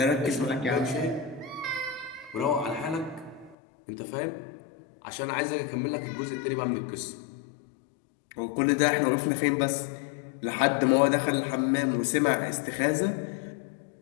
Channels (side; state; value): right; drops out; at 3.6 s